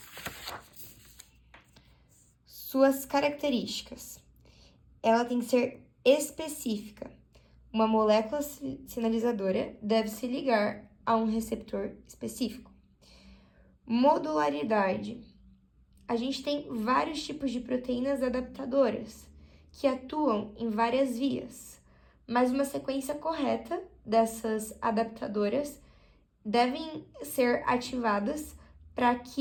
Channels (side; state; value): both; identical; correlation 1.00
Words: Suas características. Ela tem que ser específica. Uma molécula sinalizadora deve se ligar a um receptor específico. Modularidade. A gente tem vários tipos de proteínas adaptadoras que atuam em várias vias, mas uma sequência correta dessas adaptadoras devem ser ativadas para